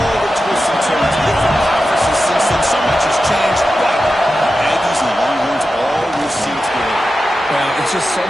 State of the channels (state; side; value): normal; both; correlation 0.92